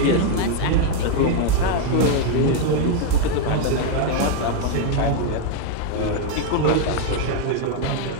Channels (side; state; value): both; different; correlation 0.00